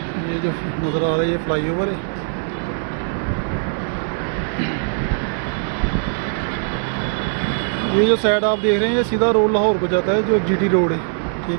ये जो नज़र आ रहा है ये फ्लाईओवर है। ये जो साइड आप देख रहे हैं ये सीधा रोड लाहौर को जाता है, जो जीटी रोड है,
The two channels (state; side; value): silent; left; 60 dB below the other